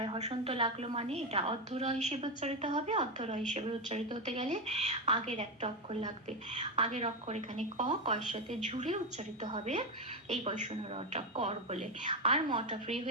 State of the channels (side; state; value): both; normal; correlation 0.11